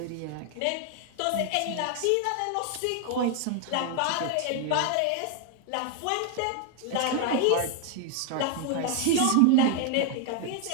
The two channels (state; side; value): different; both; correlation 0.00